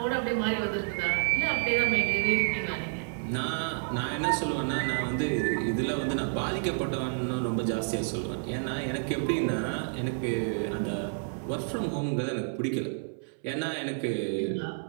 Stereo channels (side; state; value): left; silent; 58 dB below the other